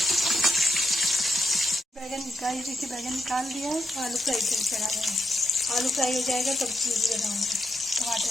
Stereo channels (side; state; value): both; normal; correlation 0.83